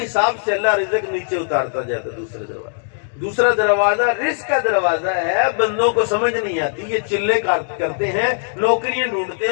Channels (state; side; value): silent; right; digital silence